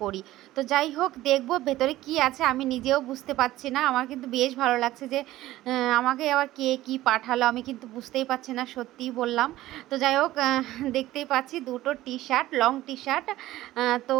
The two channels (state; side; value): quieter; left; 15.8 dB